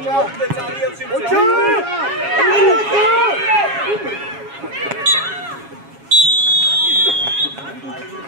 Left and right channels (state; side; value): late; left; 7.3 ms